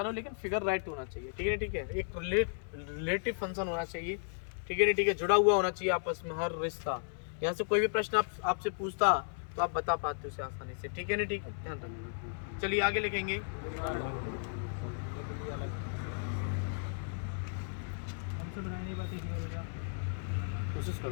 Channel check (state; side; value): silent; right; digital silence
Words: लो, लेकिन फिगर राइट होना चाहिए, ठीक है, ठीक है। एक रिलेटिव फंक्शन होना चाहिए, ठीक है, ठीक है, जुड़ा हुआ होना चाहिए आपस में हर रिश्ता। यहाँ से कोई भी प्रश्न आपसे पूछता तो आप बता पाते उसे आसानी से, ठीक है ना, ठीक है, ध्यान रखना। चलिए आगे लिखेंगे। कोशिश